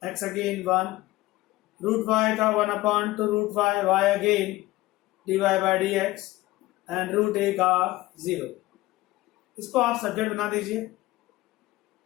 x again 1, root y का 1/2 root y, y again dy by dx and root A का 0. इसको आप सब्जेक्ट बना दीजिए.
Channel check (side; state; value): right; quieter; 18.2 dB